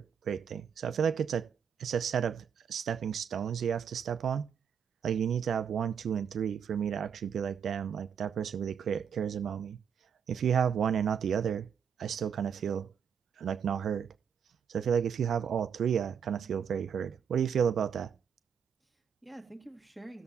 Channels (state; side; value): quieter; left; 7.5 dB